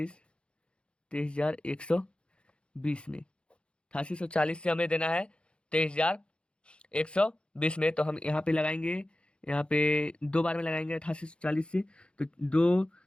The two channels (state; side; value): late; right; 0.057 ms